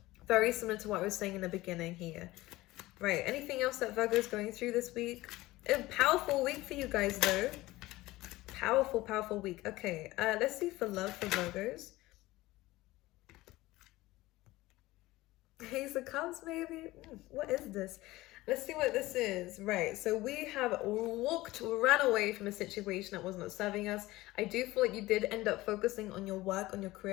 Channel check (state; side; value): quieter; right; 18.4 dB